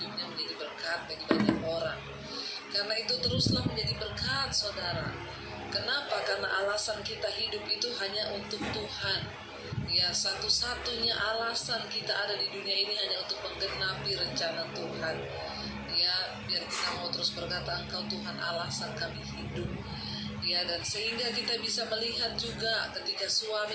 menjadi berkat bagi banyak orang. Karena itu teruslah menjadi berkat, saudara. Kenapa? Karena alasan kita hidup itu hanya untuk Tuhan. Ya, satu-satunya alasan kita ada di dunia ini hanya untuk menggenapi rencana Tuhan. Ya, biar kita mau terus berkata, Engkau Tuhan alasan kami hidup. Ya, dan sehingga kita bisa melihat juga ketika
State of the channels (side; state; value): both; identical; correlation 1.00